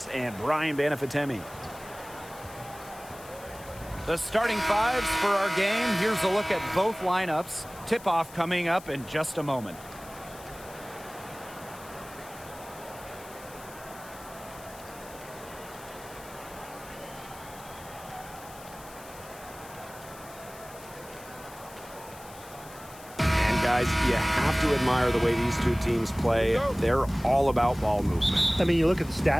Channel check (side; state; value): left; noise; hiss, 19 dB below the sound